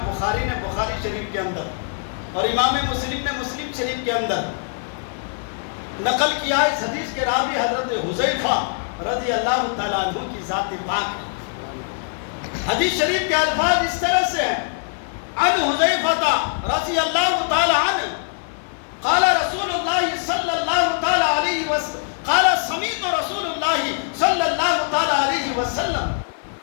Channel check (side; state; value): right; silent; 64 dB below the other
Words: بخاری نے بخاری شریف کے اندر اور امام مسلم نے مسلم شریف کے اندر نقل کیا ہے۔ اس حدیث کے راوی حضرت حذیفہ رضی اللہ تعالیٰ عنہ کی ذات پاک ہے۔ حدیث شریف کے الفاظ اس طرح سے ہیں، عن حذیفہ رضی اللہ تعالیٰ عنہ قال رسول اللہ صلی اللہ تعالیٰ علیہ وسلم قال سمیت رسول اللہ صلی اللہ تعالیٰ علیہ وسلم